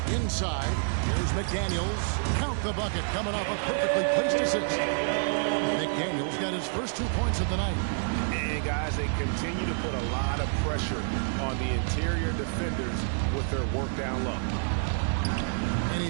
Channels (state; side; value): silent; left; 59 dB below the other